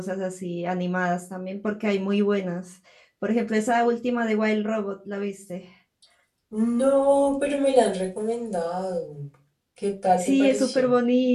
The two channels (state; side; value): identical; both; correlation 1.00